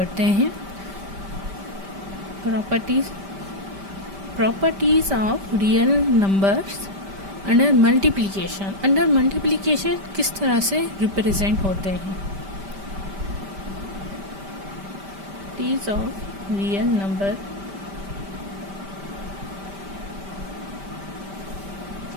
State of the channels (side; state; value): left; late; 5.1 ms